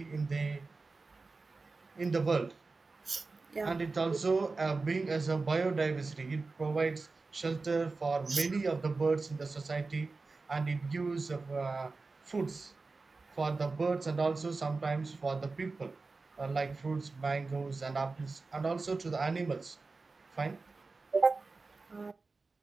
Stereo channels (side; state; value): left; quieter; 3.9 dB